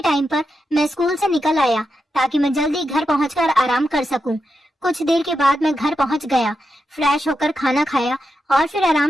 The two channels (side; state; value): both; normal; correlation 0.87